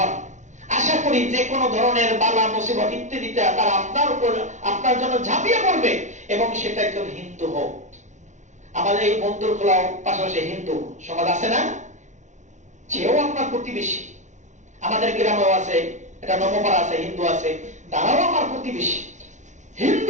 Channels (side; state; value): left; late; 0.35 ms